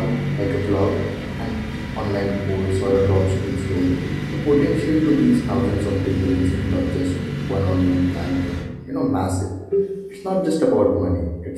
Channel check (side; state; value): both; identical; correlation 1.00